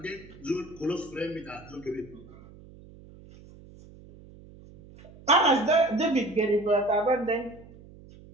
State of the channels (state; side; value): noise; right; hum, 21 dB below the sound